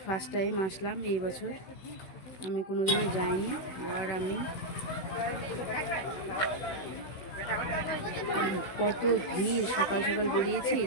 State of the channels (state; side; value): late; right; 16 ms